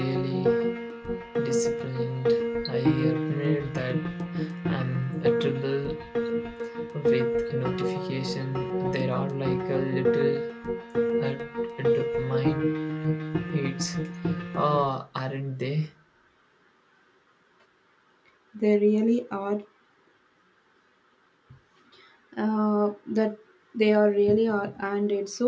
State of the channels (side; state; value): both; identical; correlation 1.00